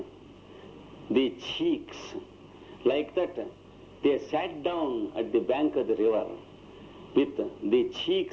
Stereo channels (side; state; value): both; identical; correlation 1.00